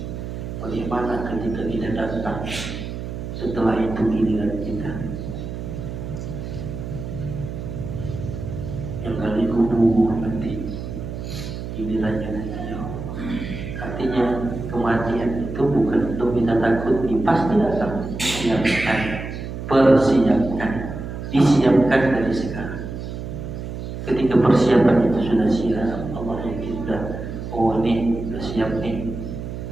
Bagaimana ketika kita datang setelah itu giliran kita yang kali kubur nanti gilirannya nanti. Artinya kematian itu bukan untuk kita takuti, pasti datang. Siapkan, persiapkan, disiapkan dari sekarang. Ketika persiapan itu sudah siap, Allah yakin sudah, oh ini sudah siap nih,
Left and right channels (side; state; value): right; noise; hum, 7 dB below the sound